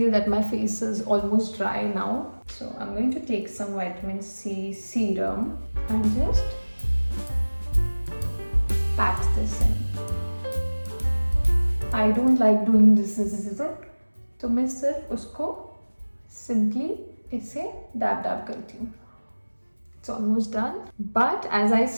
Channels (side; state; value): both; inverted; correlation -1.00